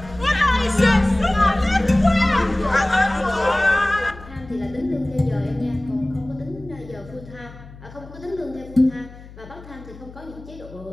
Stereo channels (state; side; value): noise; left; hum, 18 dB below the sound